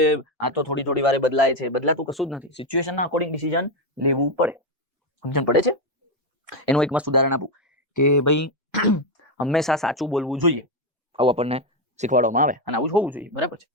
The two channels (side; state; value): both; normal; correlation 0.08